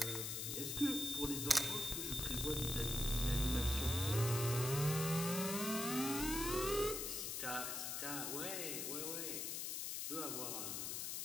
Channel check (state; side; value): noise; left; hiss, 2 dB below the sound